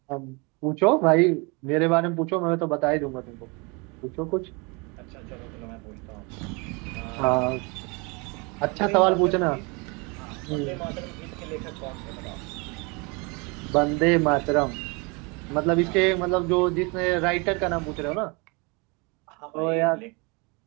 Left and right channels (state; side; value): quieter; left; 29.7 dB